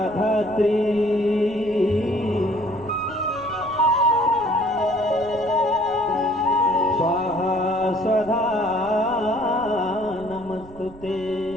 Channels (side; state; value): right; noise; rumble, 19 dB below the sound